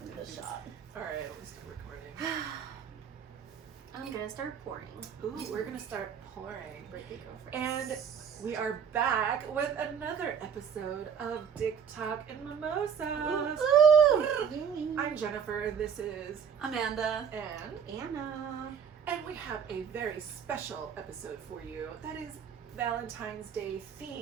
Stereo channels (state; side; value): quieter; left; 7.4 dB